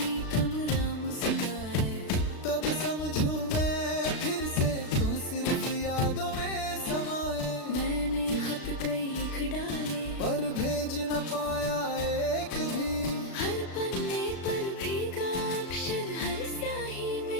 कमरा मुस्काए, तब समझूं मैं फिर से तू सिर्फ यादों में समाए। मैंने खत कई लिख डाले, पर भेज न पाया एक भी। हर पन्ने पर भीगा अक्षर, हर स्याही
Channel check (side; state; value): right; late; 36 ms